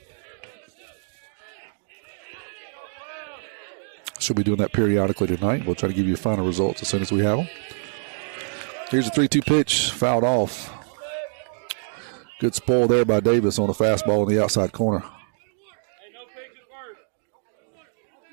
She'll be doing that periodically tonight. We'll try to give you final results as soon as we have them. Here's a 3-2 pitch, fouled off. Good spoil there by Davis on a fastball in the outside corner.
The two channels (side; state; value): left; silent; digital silence